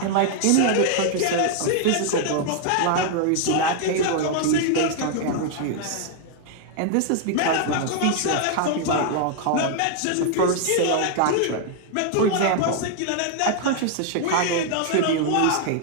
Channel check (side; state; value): both; different; correlation 0.00